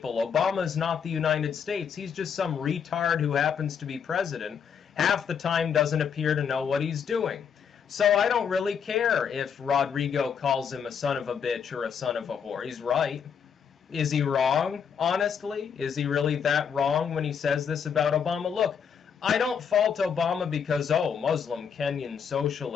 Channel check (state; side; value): quieter; right; 7.1 dB